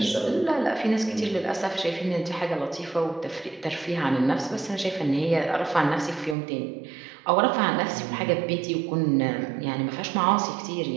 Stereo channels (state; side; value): drops out; left; at 6.4 s